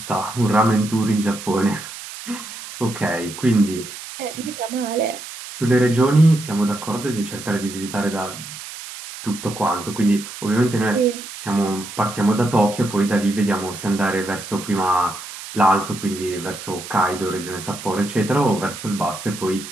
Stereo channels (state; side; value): noise; right; hiss, 12 dB below the sound